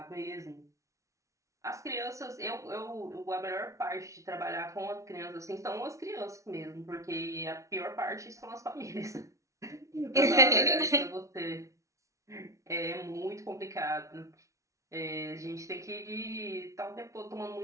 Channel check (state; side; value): late; left; 0.15 ms